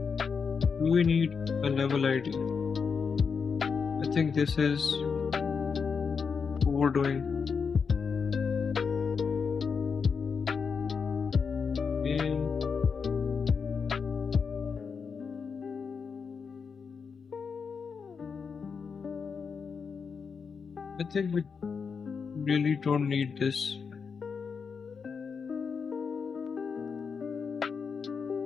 Do we need a level ID? I think this is overdoing. I think we really don't need this.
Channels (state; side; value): quieter; right; 5.8 dB